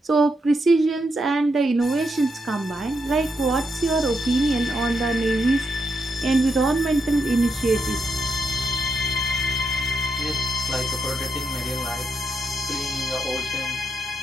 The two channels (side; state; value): both; normal; correlation 0.81